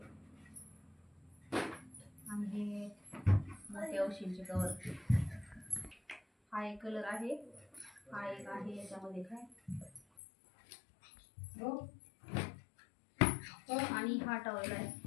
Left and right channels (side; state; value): right; drops out; at 10.0 s